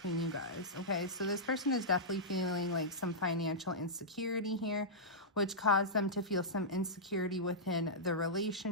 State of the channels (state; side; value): normal; both; correlation -0.12